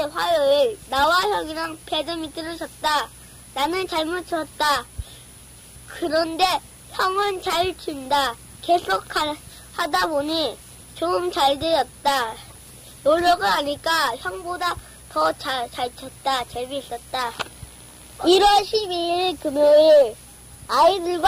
화요일. 나와 형이랑 배드민턴을 쳤다. 나는 잘못 쳤다. 그런데 형은 잘 친다. 계속 하다 보니 좀 잘 되었다. 노력을 하니까 형보다 더 잘 쳤다. 재미있었다. 1월 12일 금요일.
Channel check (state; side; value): identical; both; correlation 1.00